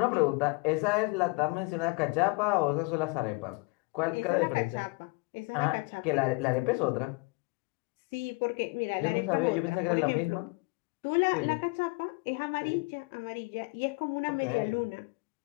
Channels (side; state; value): right; quieter; 27.8 dB